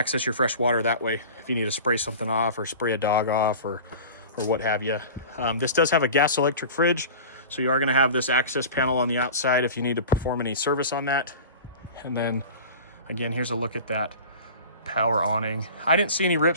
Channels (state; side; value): inverted; both; correlation -0.37